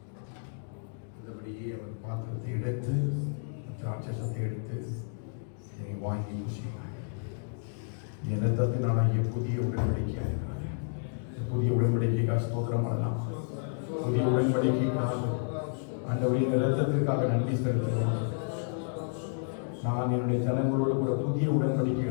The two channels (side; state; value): right; silent; digital silence